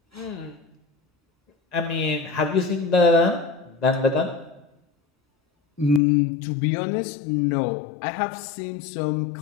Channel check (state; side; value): drops out; right; at 6.0 s